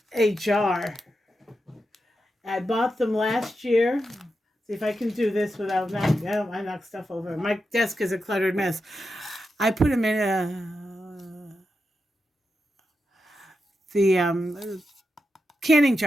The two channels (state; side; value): normal; both; correlation 0.88